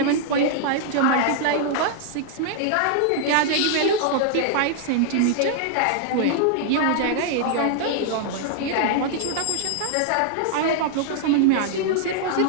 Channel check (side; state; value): both; different; correlation -0.01